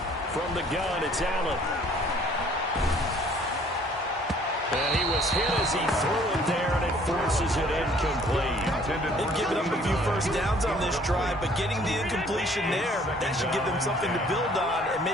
From the gun, it's Allen. And he was hit as he threw it there, and it forces it incomplete. They've given up a few first downs on this drive, but getting the incompletion there, that should give them something to build on and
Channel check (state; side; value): normal; both; correlation 0.57